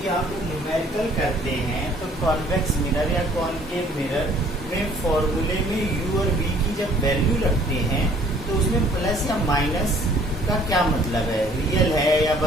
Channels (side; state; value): both; normal; correlation 0.57